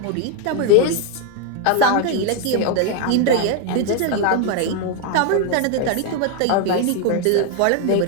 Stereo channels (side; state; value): both; different; correlation 0.01